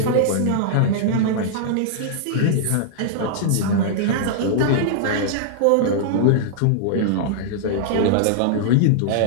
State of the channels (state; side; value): different; both; correlation -0.01